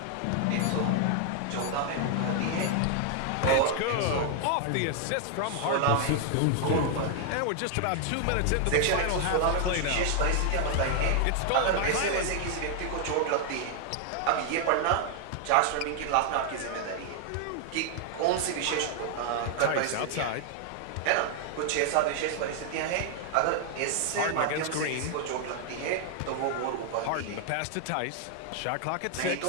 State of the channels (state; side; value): different; both; correlation 0.00